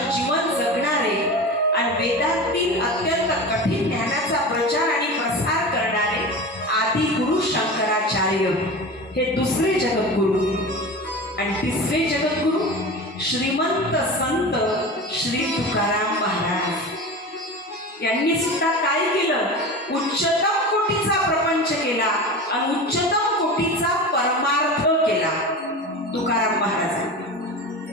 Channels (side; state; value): both; normal; correlation 0.30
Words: जीवन जगणारे आणि वेदांतील अत्यंत कठीण ज्ञानाचा प्रचार आणि प्रसार करणारे आदि गुरु शंकराचार्य हे दुसरे जगद्गुरु. आणि तिसरे जगद्गुरु श्रीमंत संत श्री तुकाराम महाराज. यांनी सुद्धा काय केलं? उच्चतम कोटीचा प्रपंच केला आणि उच्चतम कोटीचा परमार्थ केला. तुकाराम महाराजांनी